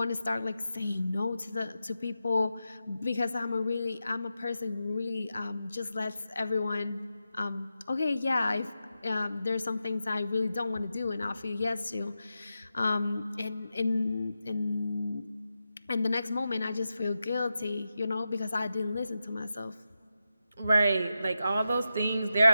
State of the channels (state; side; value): inverted; both; correlation -0.90